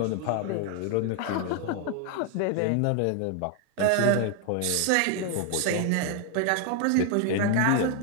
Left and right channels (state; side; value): different; both; correlation 0.00